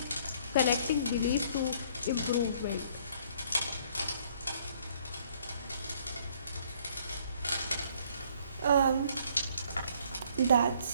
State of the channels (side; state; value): both; inverted; correlation -0.61